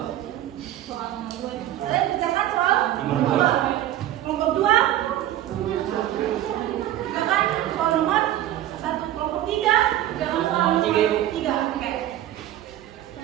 Soal nomor 2. Kalian kerjakan soal Nomor dua. Nomor 2. Kerjakan soal nomor 1. Kelompok 3. Kerjakan soal nomor 3. Oke.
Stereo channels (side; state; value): left; quieter; 13.1 dB